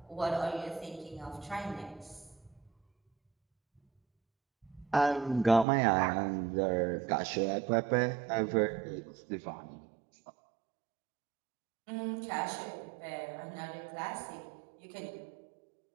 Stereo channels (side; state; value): left; drops out; at 5.7 s